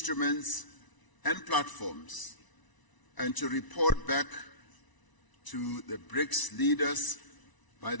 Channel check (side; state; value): right; late; 1.0 ms